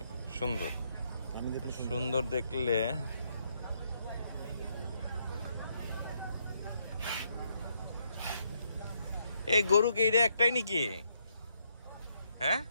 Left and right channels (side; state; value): both; inverted; correlation -0.75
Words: সুন্দর। সুন্দর দেখলে এই গরু কি এটা একটাই নাকি? হ্যাঁ,